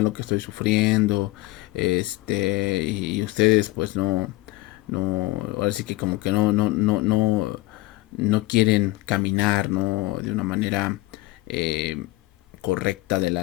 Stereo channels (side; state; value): right; quieter; 19.0 dB